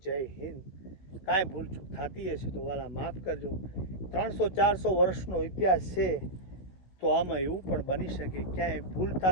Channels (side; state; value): right; late; 16 ms